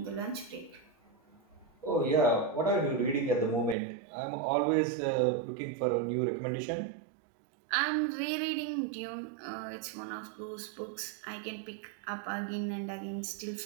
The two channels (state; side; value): drops out; left; at 3.8 s